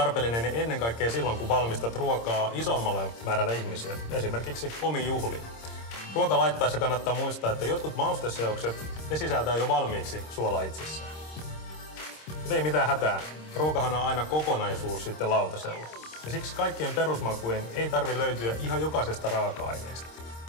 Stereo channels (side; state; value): right; late; 26 ms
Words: ennen kaikkea silloin, kun valmistat ruokaa isommalle määrälle ihmisiä, esimerkiksi omiin juhliin. Ruoka laittaessa kannattaa muistaa, että jotkut mausteseokset ne sisältää jo valmiiksi suolaa itsessään. Mutta ei mitään hätää. Ruokahan on aina kokonaisuus sitten lautasella. Ja siksi kaikkien perusmakujen ei tarvitse löytyä ihan jokaisesta raaka-aineesta.